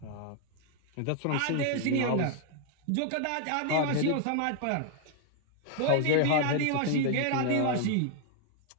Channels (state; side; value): different; both; correlation 0.00